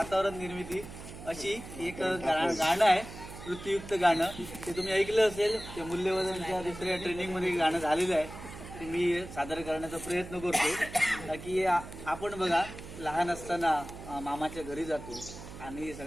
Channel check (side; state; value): right; noise; hum, 13 dB below the sound